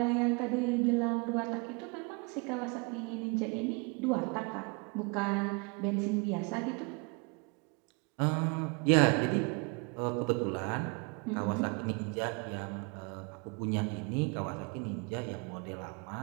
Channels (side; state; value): left; quieter; 32.5 dB